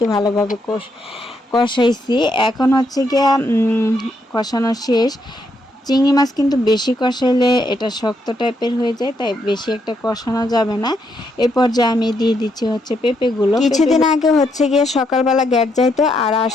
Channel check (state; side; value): normal; both; correlation 0.77